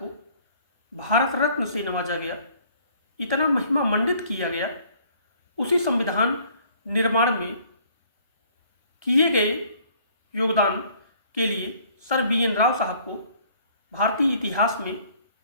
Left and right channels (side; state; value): both; inverted; correlation -0.58